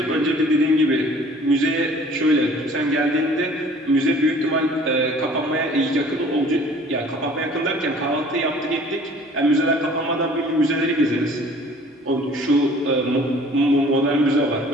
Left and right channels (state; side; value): normal; both; correlation 0.51